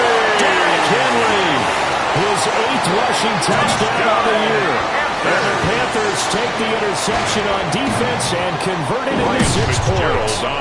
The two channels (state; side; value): identical; both; correlation 1.00